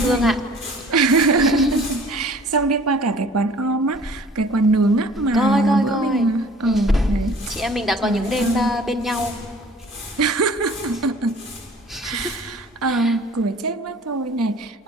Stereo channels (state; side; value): normal; both; correlation 0.49